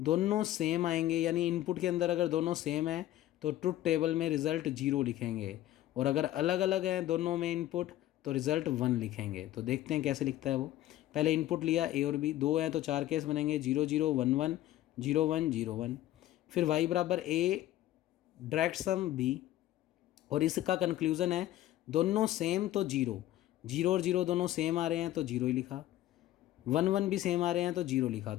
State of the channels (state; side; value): quieter; right; 14.2 dB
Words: सेम आएंगे, यानी इनपुट के अंदर अगर दोनों सेम है तो ट्रुथ टेबल में रिजल्ट 0 लिखेंगे, और अगर अलग अलग हैं दोनों में इनपुट तो रिजल्ट 1 लिखेंगे। तो देखते हैं कैसे लिखता है वो। पहले इनपुट लिया ए और बी, 2 हैं तो 4 केस बनेंगे, 0 0 1 1 0 1 0 1। फिर y बराबर ए डायरेक्ट सम बी, और इसका कंक्लूजन है दोनों सेम तो 0, 0 और 0 दोनों सेम आ रहे हैं तो 0 ही लिखा, 1 1 भी सेम आ रहे हैं तो 0 लिखा।